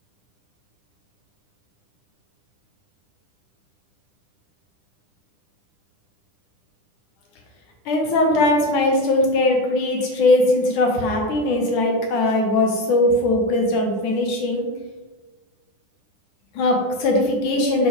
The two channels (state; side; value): late; right; 10 ms